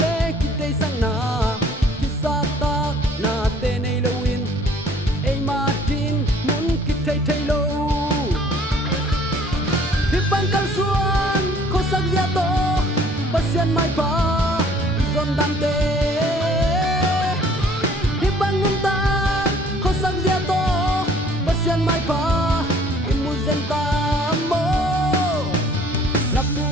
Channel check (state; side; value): normal; both; correlation 0.56